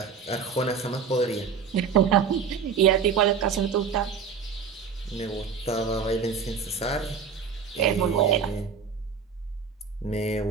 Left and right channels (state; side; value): quieter; left; 6.2 dB